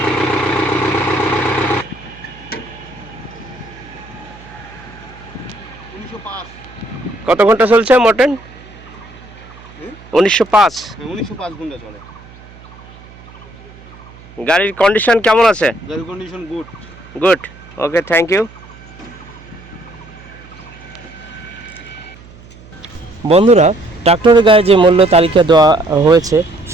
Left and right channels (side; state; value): right; noise; hum, 21 dB below the sound